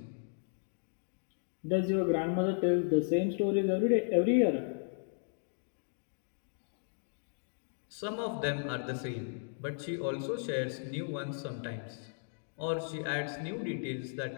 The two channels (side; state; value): right; silent; digital silence